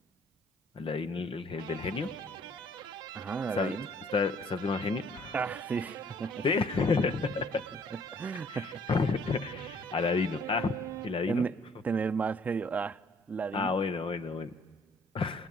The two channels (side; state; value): both; normal; correlation 0.59